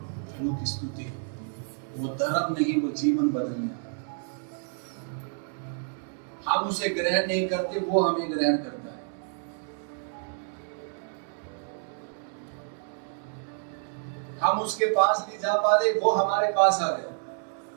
प्रभु की स्तुति। वो धर्म नहीं, वो जीवन बदल गया। हम उसे ग्रहण नहीं करते, वो हमें ग्रहण करता है। हम उसके पास नहीं जा पा रहे, वो हमारे पास आ गए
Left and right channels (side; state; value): left; silent; 59 dB below the other